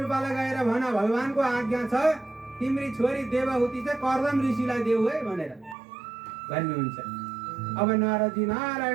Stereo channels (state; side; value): drops out; left; at 5.8 s